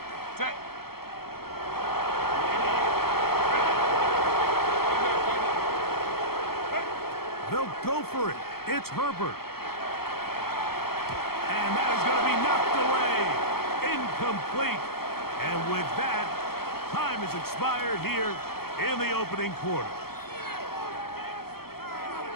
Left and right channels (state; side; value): late; right; 0.95 ms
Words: Set. They'll go for it. It's Herbert. And that is going to be knocked away. Incomplete. And with that, time has expired here in the opening quarter.